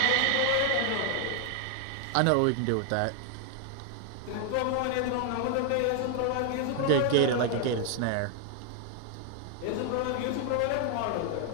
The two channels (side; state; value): both; different; correlation 0.00